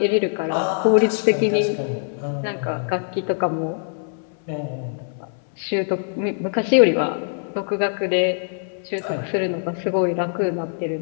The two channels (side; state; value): right; silent; 59 dB below the other